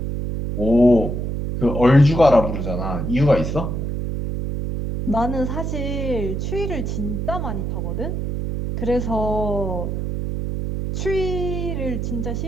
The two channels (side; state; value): right; noise; hum, 3 dB below the sound